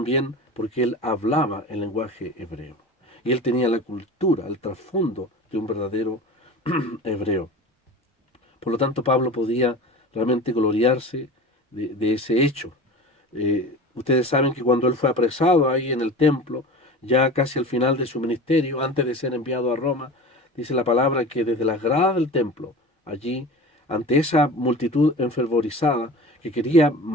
porque él hablaba el lenguaje hebreo. Y él tenía la cultura, el trasfondo de un verdadero hebreo. Por lo tanto, Pablo podía realmente gloriarse de ese hecho. Ustedes saben que cuando él fue apresado ahí en el templo, ya casi al final de su ministerio, antes de ser enviado a Roma, dice la palabra que desde las gradas del templo, allí, ante esa multitud enfervorizada que quería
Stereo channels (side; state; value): both; normal; correlation 0.34